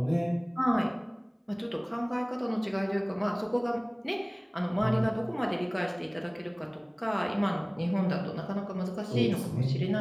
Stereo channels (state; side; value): identical; both; correlation 1.00